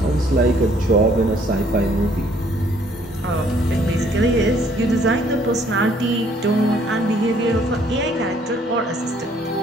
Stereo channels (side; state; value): both; normal; correlation 0.63